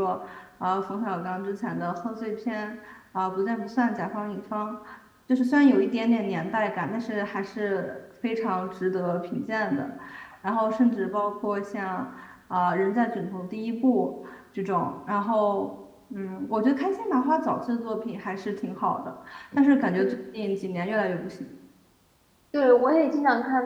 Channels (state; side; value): identical; both; correlation 1.00